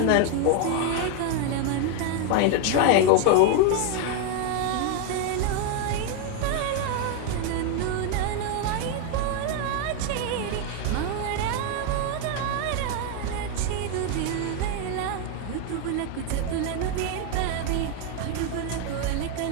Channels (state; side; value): different; both; correlation 0.01